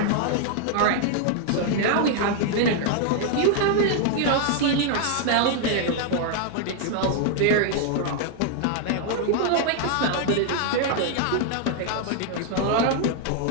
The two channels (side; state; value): both; different; correlation 0.00